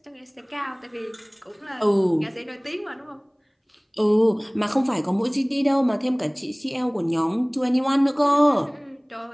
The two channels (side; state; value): both; identical; correlation 1.00